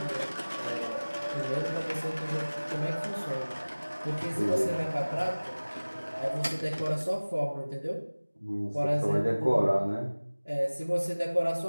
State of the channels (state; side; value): inverted; both; correlation -1.00